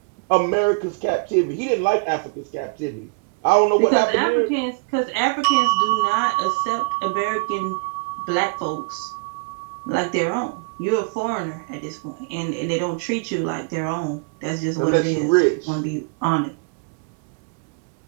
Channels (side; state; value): left; quieter; 37.4 dB